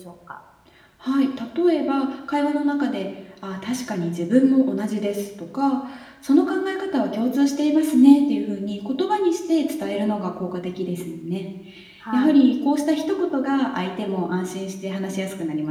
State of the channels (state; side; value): identical; both; correlation 1.00